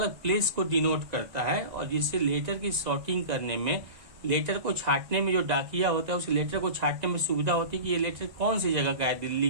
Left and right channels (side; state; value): left; late; 2.0 ms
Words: प्लेस को डिनोट करता है, और जिससे लेटर की सॉर्टिंग करने में, लेटर को छांटने में जो डाकिया होता है उस लेटर को छांटने में सुविधा होती है कि ये लेटर कौन सी जगह का है,